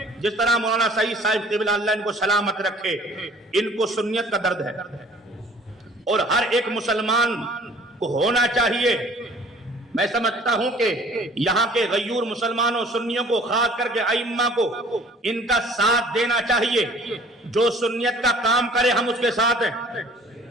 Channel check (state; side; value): normal; both; correlation 0.52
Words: جس طرح مولانا سعید صاحب قبلہ اللہ ان کو سلامت رکھے، ان کو سنیت کا درد ہے، اور ہر ایک مسلمان کو ہونا چاہیے۔ میں سمجھتا ہوں کہ یہاں کے غیور مسلمانوں سنیوں کو، خاص کر کے ائمہ کو، ان کا ساتھ دینا چاہیے۔ جو سنیت کا کام کرے ہم اس کے ساتھ ہیں،